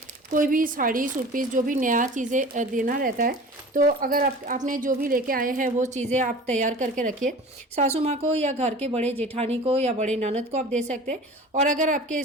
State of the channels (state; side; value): normal; both; correlation 0.40